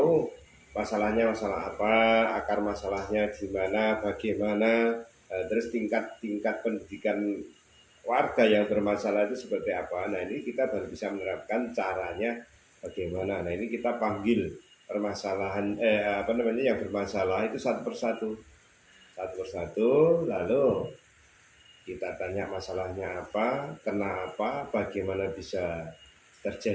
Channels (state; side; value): identical; both; correlation 1.00